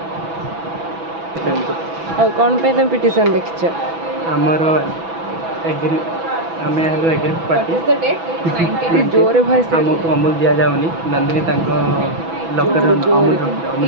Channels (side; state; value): left; late; 6.1 ms